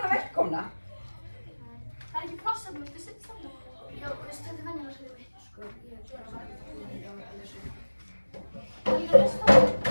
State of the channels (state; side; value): inverted; both; correlation -1.00